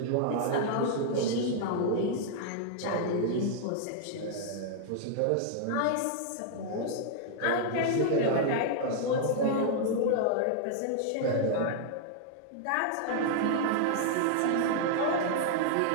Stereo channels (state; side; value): different; both; correlation -0.01